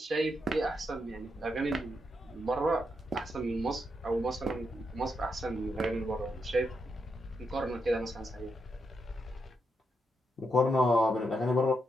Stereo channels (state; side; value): normal; both; correlation 0.82